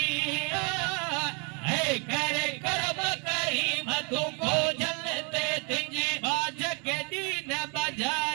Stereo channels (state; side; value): quieter; left; 34.4 dB